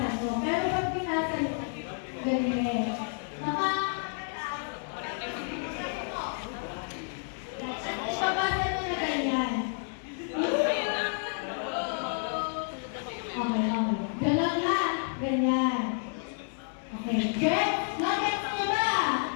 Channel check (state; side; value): silent; right; 58 dB below the other